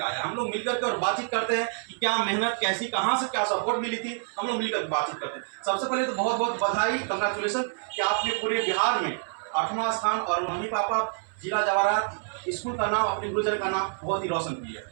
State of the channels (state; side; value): silent; left; 60 dB below the other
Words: आया है। हम लोग मिलकर के और बातचीत करते हैं कि क्या मेहनत कैसी, कहाँ से क्या सपोर्ट मिली थी, हम लोग मिलकर बातचीत करते हैं। सबसे पहले तो बहुत बहुत बधाई, कंग्रेचुलेसन कि आपने पूरे बिहार में 8वां स्थान और मम्मी पापा जिला जवाहरात स्कूल का नाम, अपने गुरुजन का नाम बहुत ही रोशन किया।